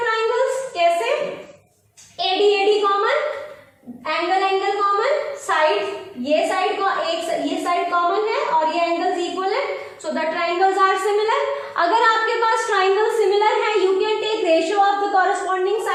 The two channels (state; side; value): identical; both; correlation 1.00